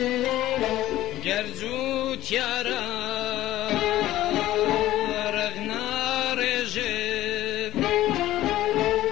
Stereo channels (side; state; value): right; quieter; 14.8 dB